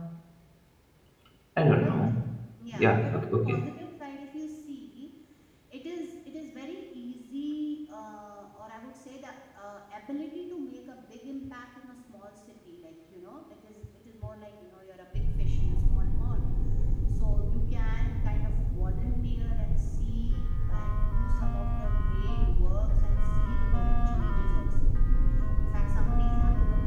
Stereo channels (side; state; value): both; identical; correlation 1.00